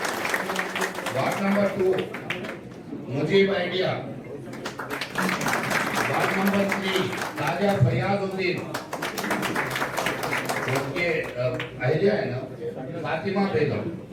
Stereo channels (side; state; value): both; identical; correlation 1.00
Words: Ward number 2 Mujeeb आइडिया। Ward number 3 ताजा फरियादुद्दीन, उनके आइडिया है ना फातिमा बेगम।